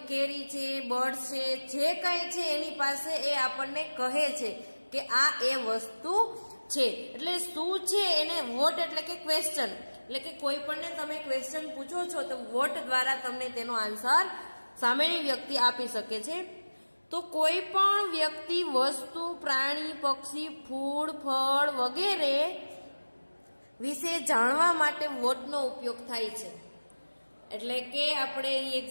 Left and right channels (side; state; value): both; inverted; correlation -1.00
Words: કેરી છે, બર્ડ છે, જે કંઈ છે એની પાસે એ આપણને કહે છે કે આ એ વસ્તુ છે. એટલે શું છે એને વોટ એટલે કે ક્વેશ્ચન. એટલે કે કોઈ પણને તમે ક્વેશ્ચન પૂછો છો તો વોટ દ્વારા તમને તેનો આન્સર સામેની વ્યક્તિ આપી શકે છે. તો કોઈ પણ વ્યક્તિ, વસ્તુ, પ્રાણી, પક્ષી, ફૂલ, ફળ વગેરે વિશે જાણવા માટે વોટનો ઉપયોગ થાય છે. એટલે કે આપણે અહીં